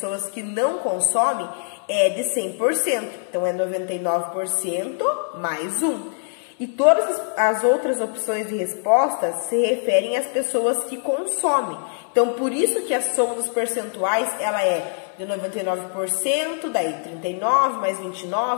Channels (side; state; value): right; silent; 63 dB below the other